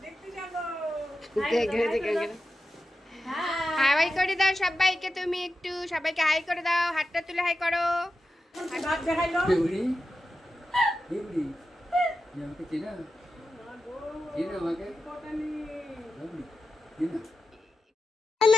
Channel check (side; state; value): both; normal; correlation 0.91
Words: হাই করে দাও সবাইকে, তুমি একটু সবাইকে হাই করে দাও, হাতটা তুলে হাই করো।